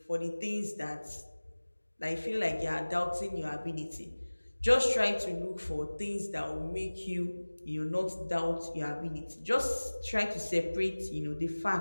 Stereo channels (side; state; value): both; inverted; correlation -1.00